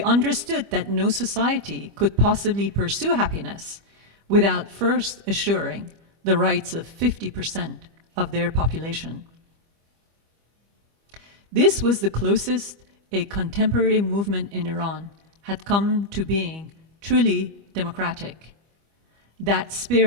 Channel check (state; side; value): late; left; 25 ms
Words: understood that no society could possibly pursue happiness without first assuring the rights of 50% of their population. This was the closest a contemporary movement in Iran had come to being truly democratic. That